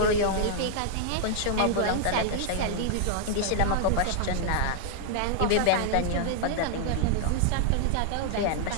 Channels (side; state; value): both; different; correlation -0.01